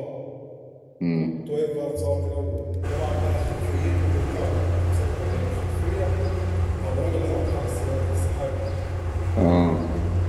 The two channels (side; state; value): both; identical; correlation 1.00